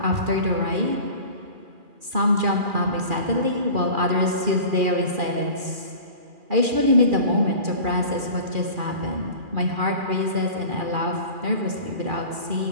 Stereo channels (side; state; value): left; late; 2.4 ms